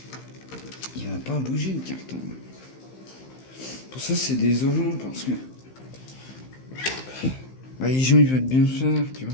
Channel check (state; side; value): late; right; 15 ms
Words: Il va pas bouger, le carton. Pour ça, c'est désolant, parce que... Bah, les gens, ils veulent bien faire, tu